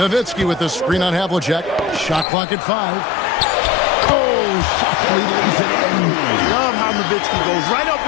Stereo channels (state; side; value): drops out; right; at 2.2 s